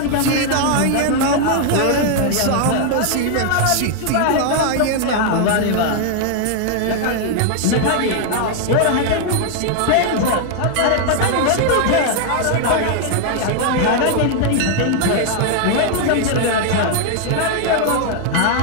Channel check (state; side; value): different; both; correlation 0.00